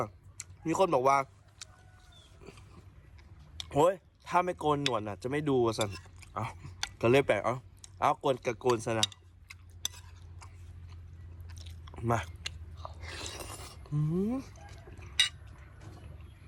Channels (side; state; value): both; identical; correlation 1.00